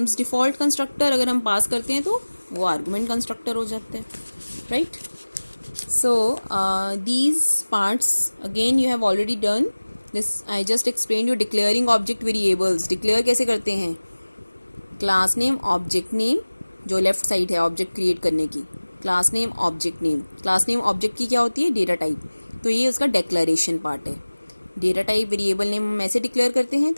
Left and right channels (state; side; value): inverted; both; correlation -1.00